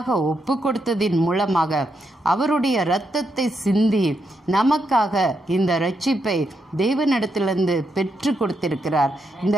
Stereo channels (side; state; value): both; normal; correlation 0.81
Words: ஒப்பு கொடுத்ததின் மூலமாக அவருடைய இரத்தத்தை சிந்தி நமக்காக இந்த இரட்சிப்பை தேவனிடத்திலிருந்து பெற்று கொடுத்திருக்கிறார். இந்த